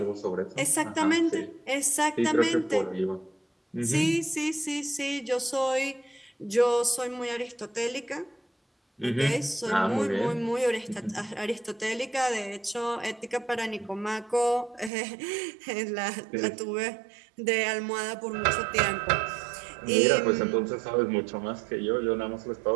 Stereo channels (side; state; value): left; drops out; at 14.9 s